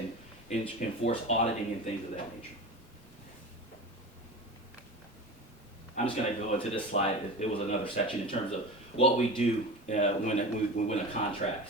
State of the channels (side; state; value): both; normal; correlation 0.31